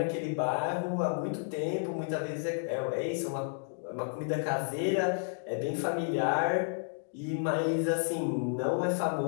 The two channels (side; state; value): right; silent; digital silence